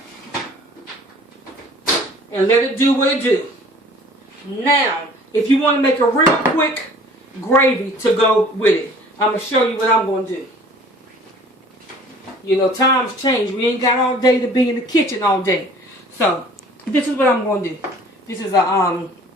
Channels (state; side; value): normal; both; correlation 0.50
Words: And let it do what it do. Now, if you want to make a real quick gravy to go with it, I'm going to show you what I'm going to do. You know, times change. We ain't got all day to be in the kitchen all day. So, this is what I'm going to do. This is a